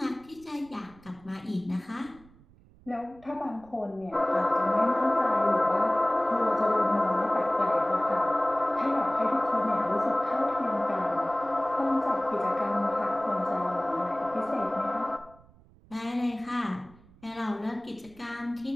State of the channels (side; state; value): right; noise; rumble, 26 dB below the sound